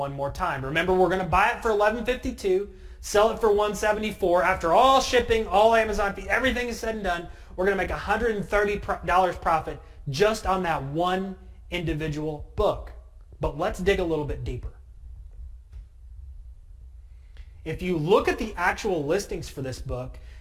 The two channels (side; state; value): both; identical; correlation 1.00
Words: more time. Remember, we're going to buy it for $11.52, sell it for $174. After all shipping, all Amazon fees, everything is said and done, we're going to make $130 profit just on that one individual book. But let's dig a little bit deeper. If you look at the actual listings for this book,